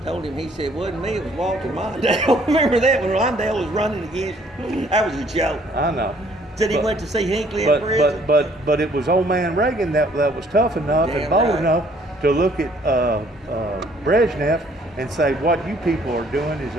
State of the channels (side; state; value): both; normal; correlation 0.61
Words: him, he said, wasn't me, it was Walter Mondale. Remember that when Mondale was running against you? That was a joke. I know. Said he went to see Hinckley in prison. But it was old man Reagan that was tough enough and Damn bold right. enough to look at Brezhnev and say, what you people are doing is